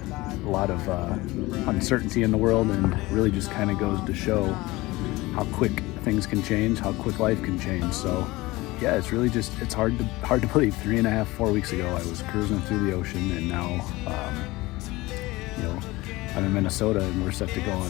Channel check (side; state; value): right; quieter; 20.4 dB